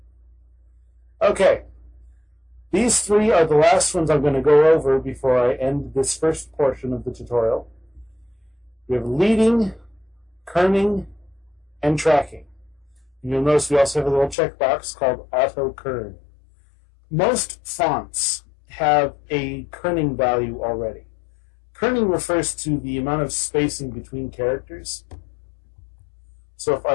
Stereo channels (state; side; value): drops out; right; at 14.4 s